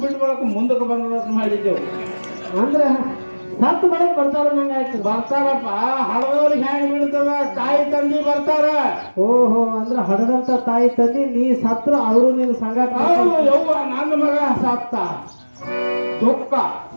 ಬಿಟ್ಟು ಬಳಕ ಮುಂದಕ್ಕೆ ಬಂದ ಮಾಡಿದ್ದೆವು. ಅಂದ್ರೆ ಸತ್ತು ಬೆಳಗ್ಗೆ ಬರ್ತಾರ ನಂಗೆ ಆಯ್ತು. ಬರ್ತಾರಪ್ಪ, ಹಡದವ್ರಿಗೆ ಹ್ಯಾಂಗ ಬಿಡ್ತದ? ತಾಯಿ ತಂದಿ ಬರ್ತಾರ. ಓಹೋ, ಅಂದ್ರೆ ಹಡದಂತ ತಾಯಿ ತಂದಿ ನೀ ಸತ್ರ ಅವರು ನಿನ್ನ ಸಂಗಾಟ. ಹೌದು ಯವ್ವ, ನನ್ನ ಮಗ ಸತ್ತ.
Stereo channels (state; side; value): inverted; both; correlation -1.00